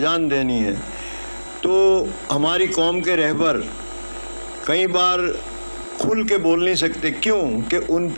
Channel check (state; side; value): inverted; both; correlation -1.00